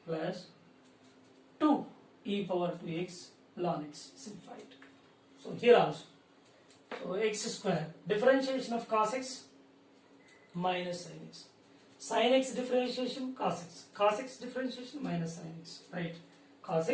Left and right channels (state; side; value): identical; both; correlation 1.00